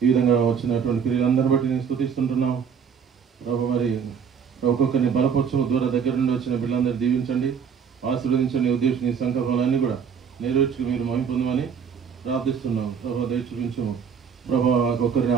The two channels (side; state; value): left; quieter; 7.0 dB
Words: ఈ విధంగా వచ్చినటువంటి క్రియలందరిని బట్టి నేను స్తుతిస్తుంటున్నాం. ప్రభు మరి ఒక్కొక్కరిని బలపరచము దూర దగ్గర నుండి వచ్చిన బిడ్డలందరినీ దీవించండి, ఆశీర్వదించండి. ఉద్దేశం నీ సంకల్పాలన్నీ కూడా నెరవేర్చుకు మీరు మహిమ పొందమని ప్రార్థిస్తున్నాం. ప్రభు దయ చూపించము. ప్రభు ఒక్కరిని